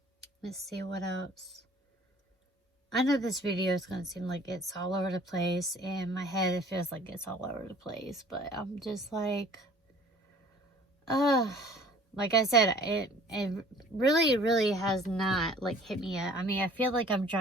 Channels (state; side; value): normal; both; correlation 0.51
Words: Let's see what else. I know this video is going to seem like it's all over the place. In my head, it feels like it's all over the place. But I'm just like I said, it really has not, like, hit me yet. I mean, I feel like I'm